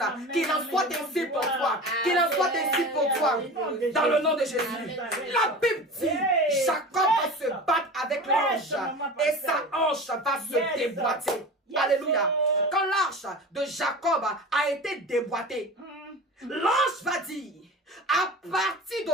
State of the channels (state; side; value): normal; both; correlation 0.33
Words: Qu'il en soit ainsi pour toi. Qu'il en soit ainsi pour toi. Dans le nom de Jésus. La Bible dit, Jacob va se battre avec l'ange et sa hanche va se déboîter. Alléluia. Quand l'arche de Jacob a été déboîtée, l'ange va dire, à partir